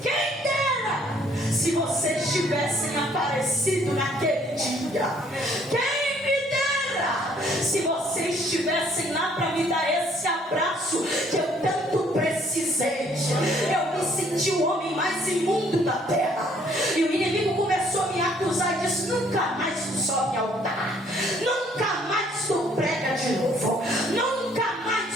quem dera se vocês tivessem aparecido naquele dia. Quem me dera se vocês estivessem lá para me dar esse abraço que eu tanto precisei. Eu me senti o homem mais imundo da terra. E o inimigo começou a me acusar e disse, nunca mais tu sobe ao altar, nunca mais tu prega de novo, nunca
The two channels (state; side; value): normal; both; correlation 0.63